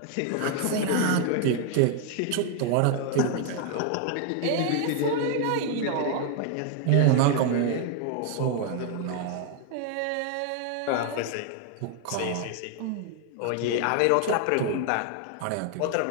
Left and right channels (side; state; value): both; different; correlation 0.00